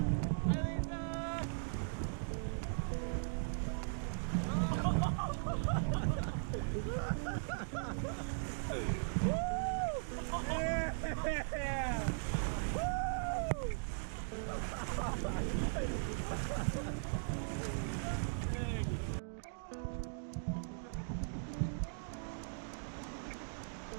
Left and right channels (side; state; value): left; silent; digital silence